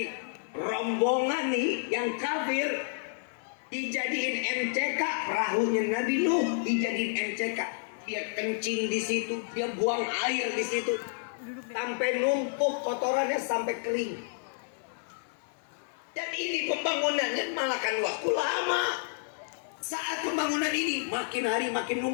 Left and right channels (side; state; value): right; silent; 58 dB below the other